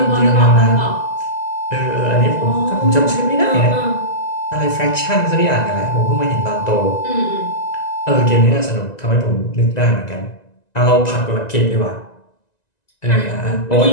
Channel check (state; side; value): late; right; 1.9 ms